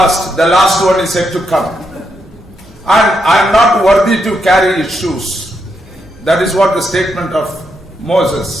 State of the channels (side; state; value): both; normal; correlation 0.80